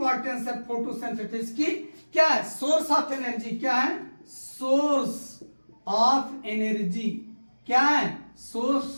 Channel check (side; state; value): both; inverted; correlation -1.00